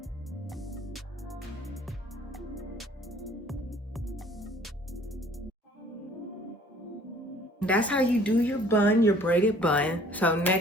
That's how you do your bun, your braided bun. So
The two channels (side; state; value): both; normal; correlation 0.55